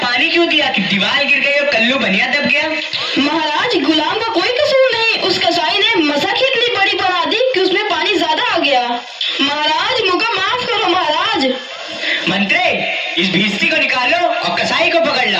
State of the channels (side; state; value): both; identical; correlation 1.00